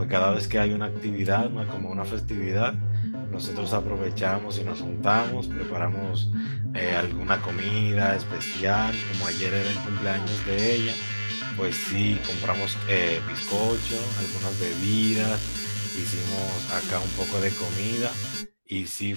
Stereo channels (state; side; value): inverted; both; correlation -1.00